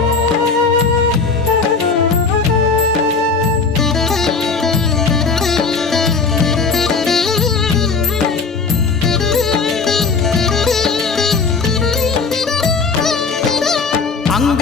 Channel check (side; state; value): right; quieter; 4.6 dB